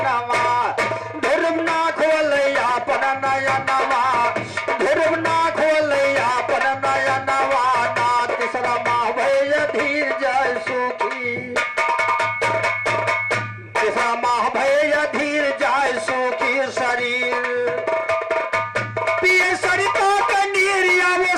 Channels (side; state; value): both; identical; correlation 1.00